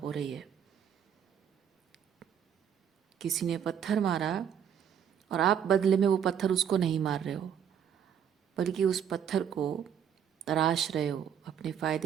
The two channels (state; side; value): quieter; left; 8.5 dB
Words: हो रही है। किसी ने पत्थर मारा और आप बदले में वो पत्थर उसको नहीं मार रहे हो, बल्कि उस पत्थर को तराश रहे हो, अपने